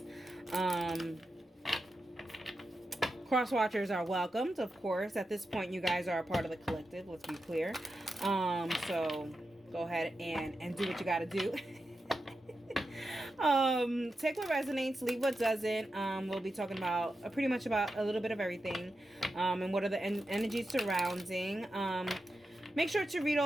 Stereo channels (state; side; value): normal; both; correlation 0.89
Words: Cross watchers are welcomed, of course. At this point, you guys are a part of the collective. Let's be clear. So go ahead and do what you got to do. Take what resonates, leave what doesn't. We'll be talking about pretty much about a little bit of everything, and what are the energies surrounding. Make sure to read